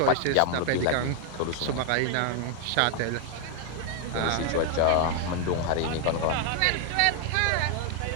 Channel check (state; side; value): different; both; correlation 0.00